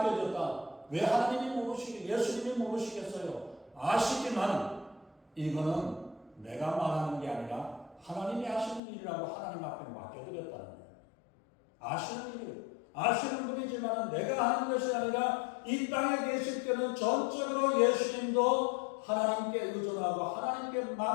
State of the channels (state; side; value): drops out; right; at 8.8 s